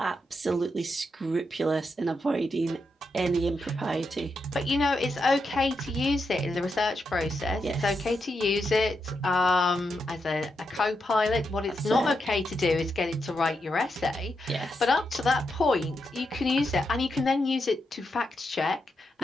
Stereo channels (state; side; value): normal; both; correlation 0.84